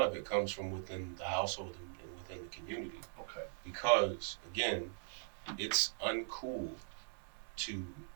of it comes from within the household and within the community. Okay. Because, again, it's uncool to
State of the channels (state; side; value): silent; left; digital silence